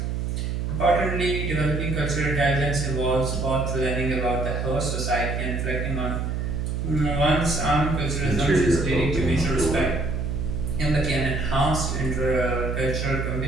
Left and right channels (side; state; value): right; noise; hum, 1 dB below the sound